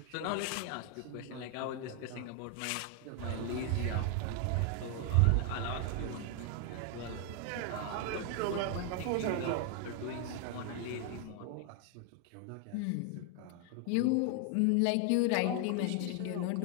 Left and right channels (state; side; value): different; both; correlation 0.01